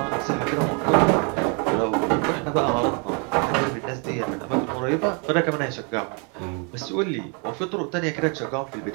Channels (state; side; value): quieter; left; 36.2 dB